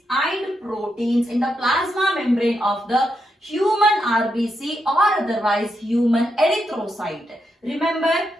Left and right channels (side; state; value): both; normal; correlation 0.83